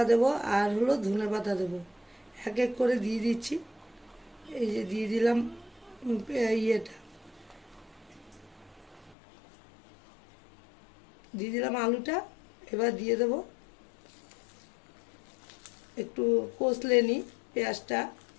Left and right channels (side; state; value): right; drops out; at 9.2 s